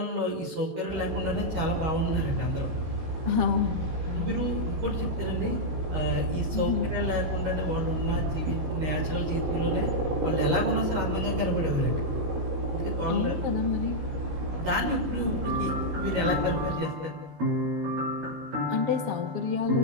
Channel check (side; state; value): left; late; 13 ms